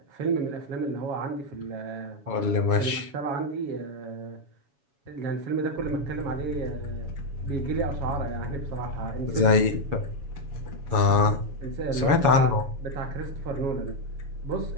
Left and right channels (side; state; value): left; late; 7.1 ms